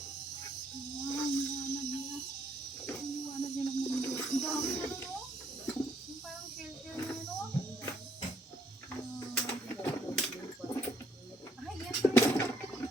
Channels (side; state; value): both; normal; correlation 0.67